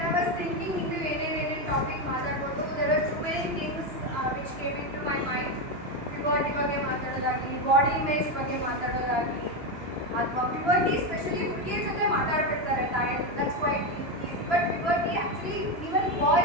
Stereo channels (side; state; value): left; late; 3.0 ms